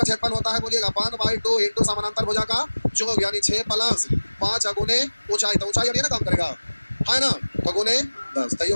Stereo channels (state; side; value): inverted; both; correlation -1.00